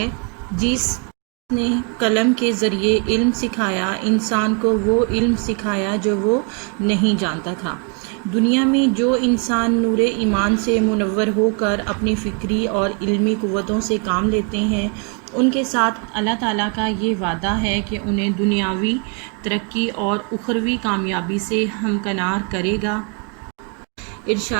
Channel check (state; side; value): quieter; left; 36.2 dB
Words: جس نے قلم کے ذریعے علم سکھایا، انسان کو وہ علم سکھایا جو وہ نہیں جانتا تھا۔ دنیا میں جو انسان نور ایمان سے منور ہو کر اپنی فکری اور علمی قوتوں سے کام لیتے ہیں، ان کے ساتھ اللہ تعالیٰ کا یہ وعدہ ہے کہ انہیں دنیاوی ترقی اور اخروی کامیابی سے ہمکنار کرے گا۔